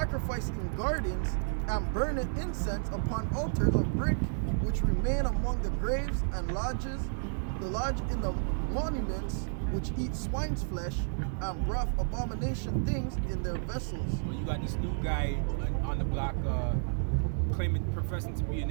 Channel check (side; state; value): left; silent; digital silence